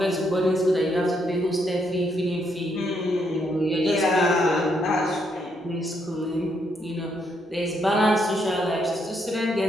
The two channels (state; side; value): normal; both; correlation 0.75